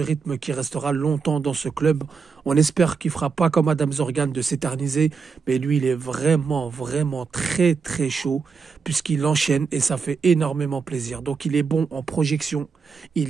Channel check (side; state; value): left; quieter; 5.4 dB